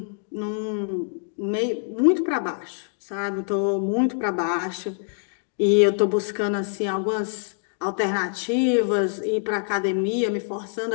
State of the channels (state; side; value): silent; right; digital silence